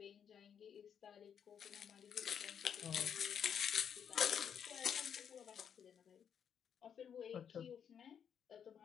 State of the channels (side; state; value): right; quieter; 8.0 dB